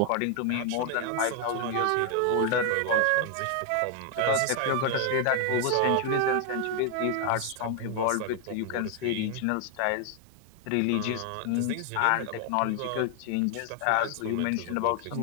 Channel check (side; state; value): both; different; correlation 0.00